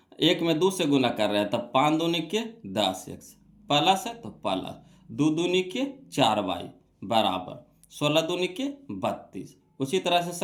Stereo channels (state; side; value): identical; both; correlation 1.00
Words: 1 में 2 से गुना कर रहे हैं, तब 5 दूनी के 10x प्लस है तो प्लस 2 दूनी के 4y बराबर 16 दूनी के 32। उसी तरह से